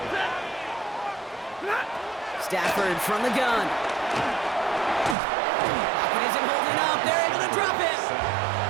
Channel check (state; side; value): drops out; left; at 5.2 s